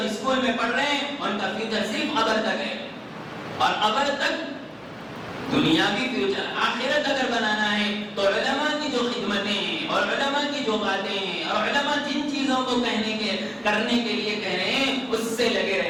اسکول میں پڑھ رہے ہیں ان کا فیوچر صرف قبر تک ہے، اور قبر تک دنیاوی فیوچر۔ آخرت اگر بنانا ہے تو علماء کی جو خدمتیں ہیں اور علماء کی جو باتیں ہیں اور علماء جن چیزوں کو کرنے کے لیے کہہ رہے ہیں اس سے لگے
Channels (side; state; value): both; identical; correlation 1.00